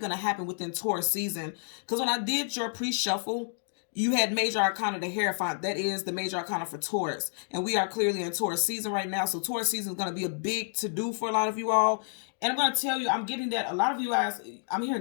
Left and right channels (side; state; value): right; silent; digital silence